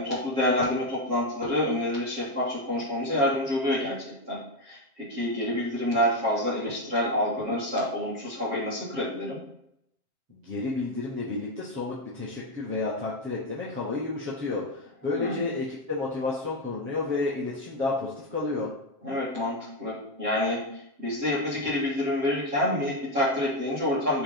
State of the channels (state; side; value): late; left; 7.6 ms